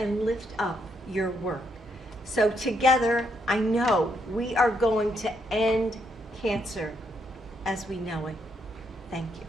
lift up your work. So together, I know we are going to end cancer as we know it. Thank you.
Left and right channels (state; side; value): normal; both; correlation 0.76